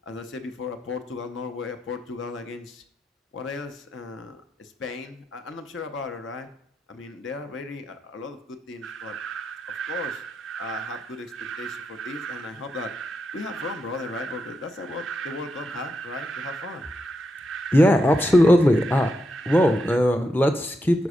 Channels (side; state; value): both; normal; correlation 0.84